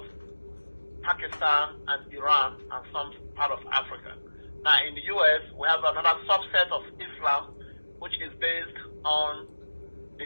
Pakistan and Iran and some part of Africa. Now, in the U.S., we have another subset of Islam, which is based on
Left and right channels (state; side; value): inverted; both; correlation -1.00